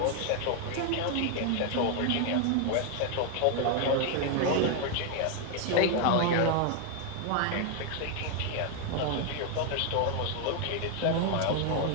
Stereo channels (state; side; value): different; both; correlation 0.01